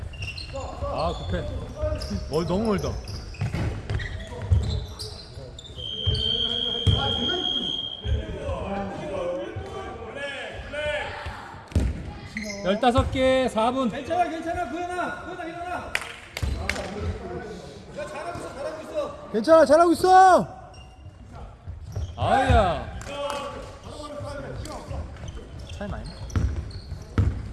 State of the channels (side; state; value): both; identical; correlation 1.00